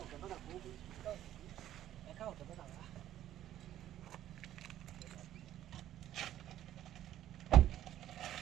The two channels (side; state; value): left; quieter; 12.3 dB